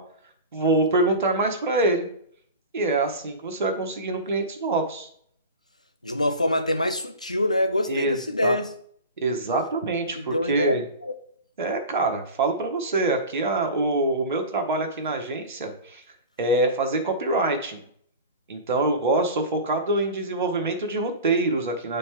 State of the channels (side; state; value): both; inverted; correlation -0.32